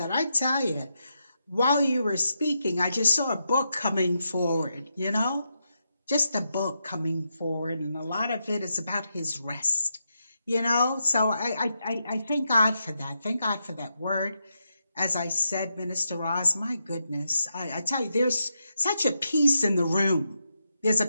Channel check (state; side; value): inverted; both; correlation -0.84